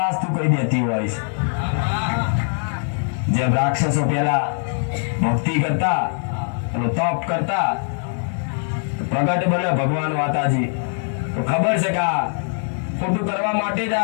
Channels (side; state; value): right; silent; 58 dB below the other